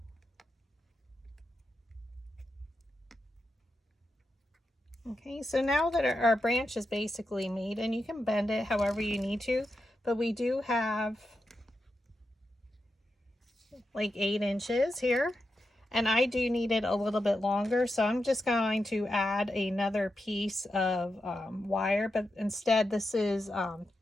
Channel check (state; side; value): normal; both; correlation 0.88